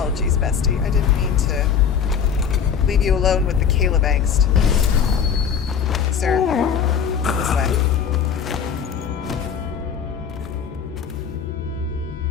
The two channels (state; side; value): quieter; right; 7.3 dB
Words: bestie. I didn't mean to leave you alone with the Caleb angst. Sir, this way.